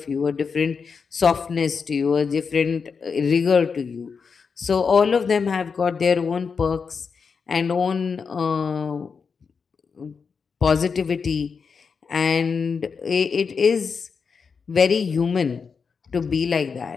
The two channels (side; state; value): right; quieter; 5.6 dB